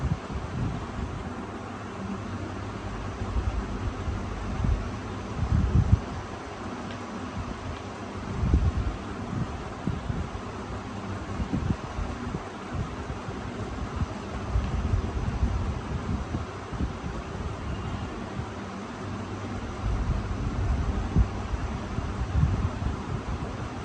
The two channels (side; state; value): both; identical; correlation 1.00